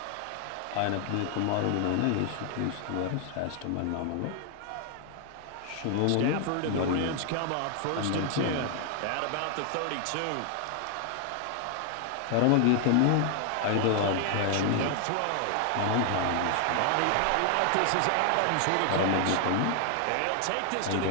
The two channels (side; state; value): both; different; correlation 0.00